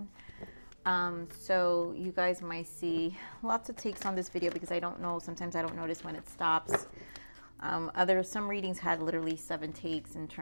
So you guys might see lots of takes on this video because I don't know. Sometimes I don't notice when it stops. Some readings had literally 7 takes in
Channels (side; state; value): both; inverted; correlation -1.00